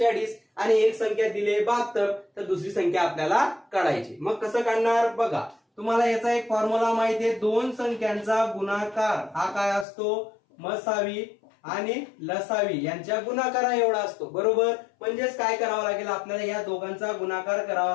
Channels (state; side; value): drops out; right; at 9.9 s